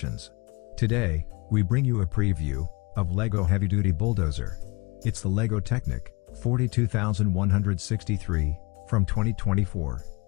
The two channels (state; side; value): quieter; right; 26.8 dB